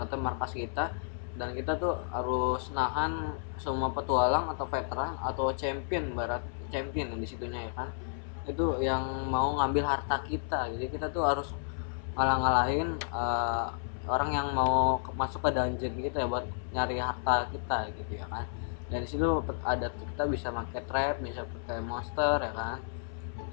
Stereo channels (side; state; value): right; silent; 56 dB below the other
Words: kata markas kita, dan kita tuh harus nahan semua petualang atau veteran atau champion yang di situnya ya kan, itu yang mau ngambil harta kita. Jadi kita tuh harus ngalahin orang yang mau masuk ke dungeon gitu ya, buat nyari harta kita gitu ya kan. Dan disitu ada kita bisa pakai trap, bisa pakai monster ya kan.